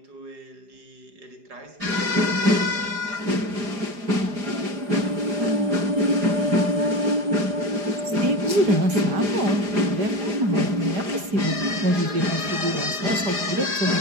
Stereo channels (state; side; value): late; left; 4.9 ms